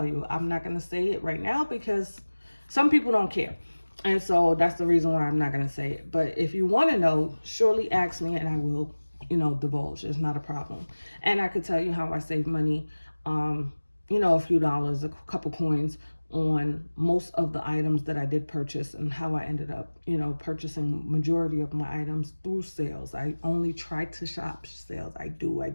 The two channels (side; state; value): both; inverted; correlation -1.00